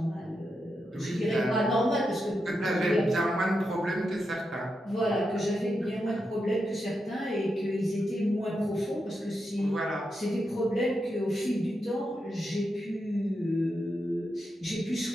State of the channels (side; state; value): both; normal; correlation 0.86